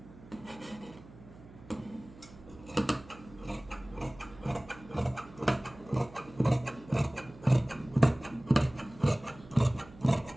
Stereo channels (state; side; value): noise; right; hum, 20 dB below the sound